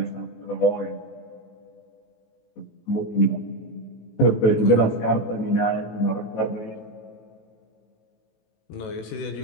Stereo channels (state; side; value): late; right; 18 ms